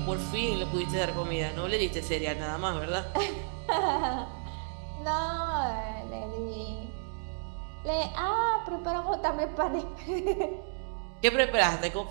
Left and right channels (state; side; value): silent; left; digital silence